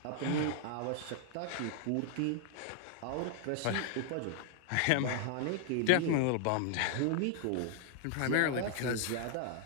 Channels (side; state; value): both; different; correlation 0.00